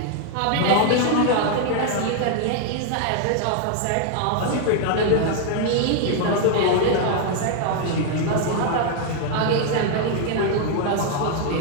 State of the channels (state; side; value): different; both; correlation 0.00